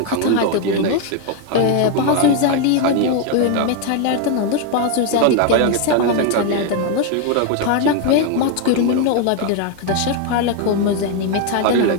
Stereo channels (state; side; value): different; both; correlation 0.01